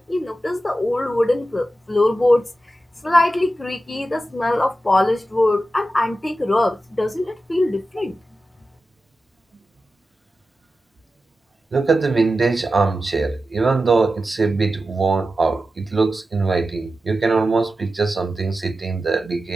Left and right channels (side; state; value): both; normal; correlation 0.92